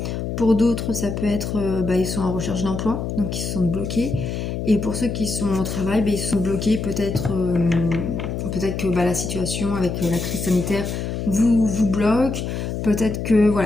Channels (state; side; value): noise; left; hum, 4 dB below the sound